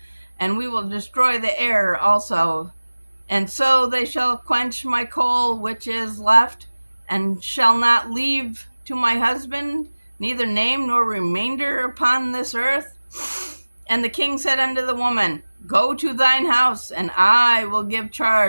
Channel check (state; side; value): inverted; both; correlation -1.00